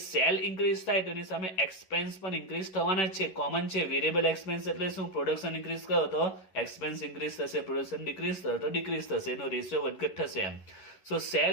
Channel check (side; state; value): right; late; 11 ms